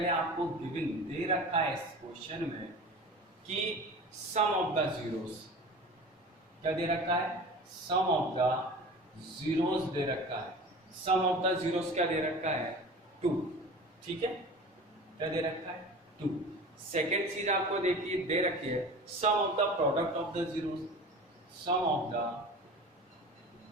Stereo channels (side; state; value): both; normal; correlation 0.37